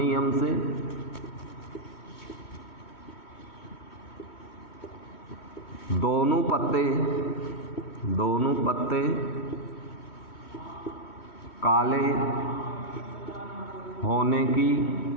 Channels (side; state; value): right; late; 3.1 ms